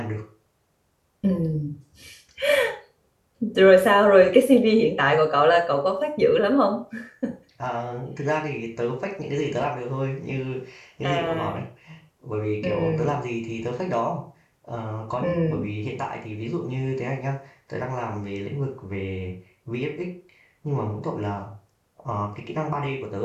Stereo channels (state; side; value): identical; both; correlation 1.00